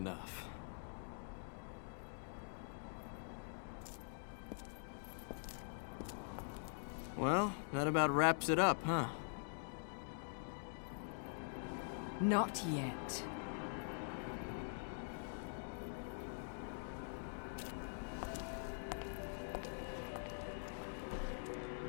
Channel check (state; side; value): silent; right; digital silence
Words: Well, that about wraps it up, huh? Not yet.